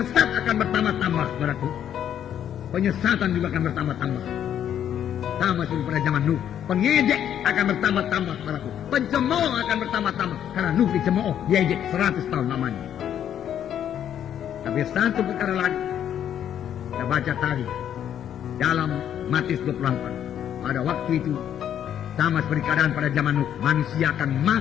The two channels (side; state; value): right; quieter; 9.9 dB